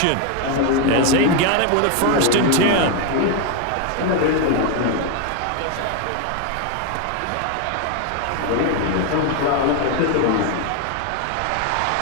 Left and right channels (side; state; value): both; different; correlation 0.01